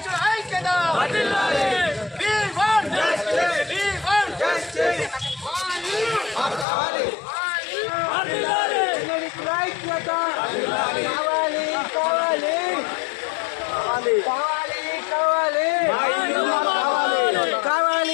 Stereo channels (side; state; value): right; drops out; at 6.7 s